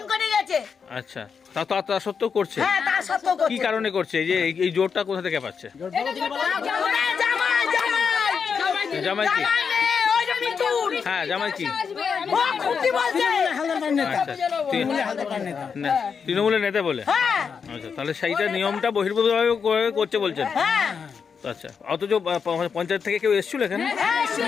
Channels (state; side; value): quieter; right; 6.2 dB